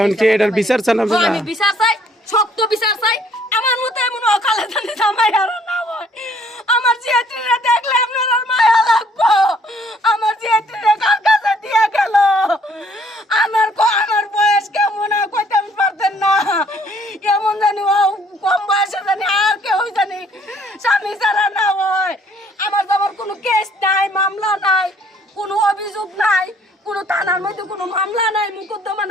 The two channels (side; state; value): both; normal; correlation 0.62